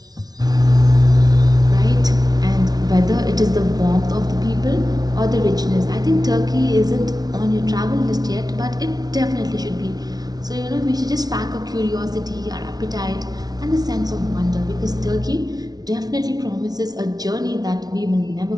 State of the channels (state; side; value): late; left; 0.19 ms